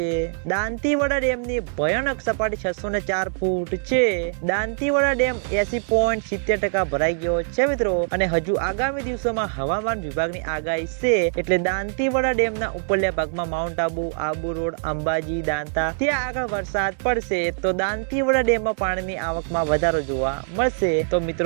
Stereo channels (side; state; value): left; silent; 63 dB below the other